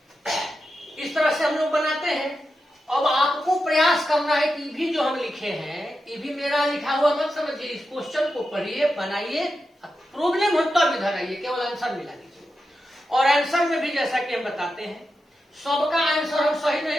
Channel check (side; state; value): both; normal; correlation 0.89